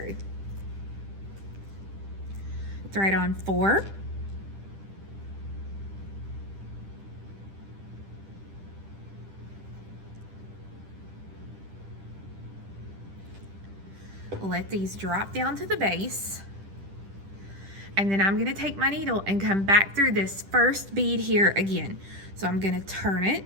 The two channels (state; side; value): late; left; 10 ms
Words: Thread on 4. Let these drop down to the base. And then I'm going to take my needle and come back through this first bead here again. So I'm going to turn it